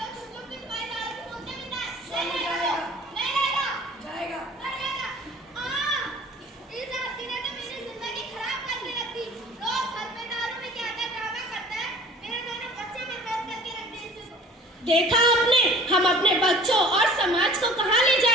देखा आपने, हम अपने बच्चों और समाज को कहां ले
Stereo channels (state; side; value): normal; both; correlation 0.47